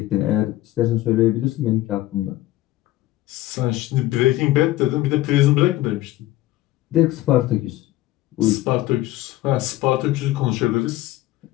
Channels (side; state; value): right; quieter; 16.1 dB